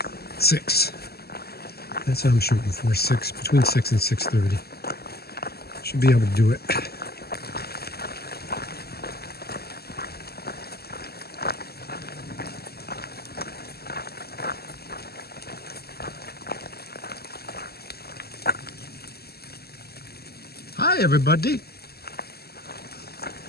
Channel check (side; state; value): right; late; 0.46 ms